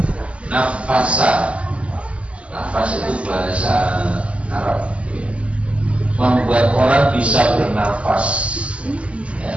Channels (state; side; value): late; left; 0.060 ms